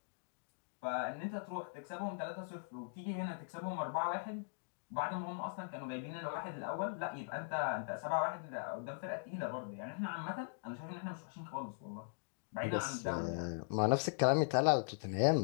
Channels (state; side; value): silent; right; digital silence